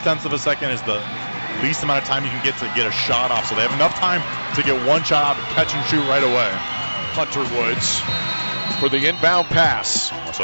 of a second is the least amount of time you can get to get a shot off. So they have enough time to get one shot out, catch and shoot right away. Hunter Woods for the inbound pass.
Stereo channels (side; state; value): both; inverted; correlation -1.00